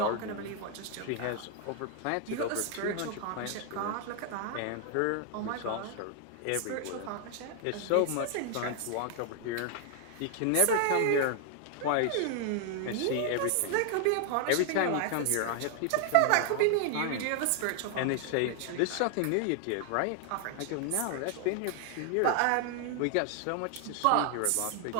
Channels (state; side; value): different; both; correlation 0.00